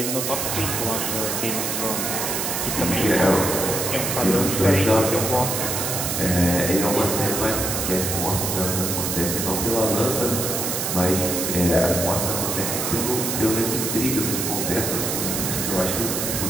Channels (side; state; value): right; noise; hiss, 1 dB below the sound